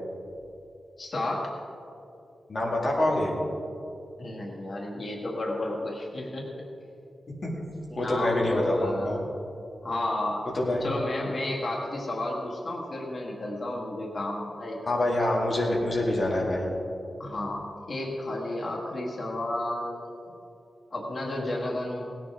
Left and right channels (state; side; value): normal; both; correlation 0.91